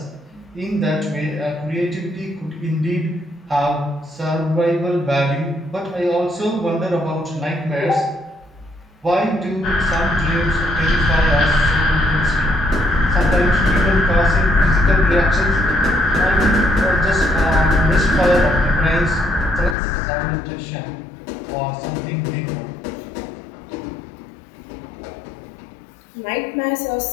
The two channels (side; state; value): right; drops out; at 19.8 s